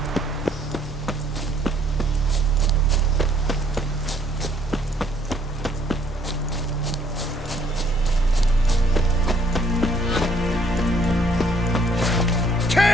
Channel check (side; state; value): both; normal; correlation 0.63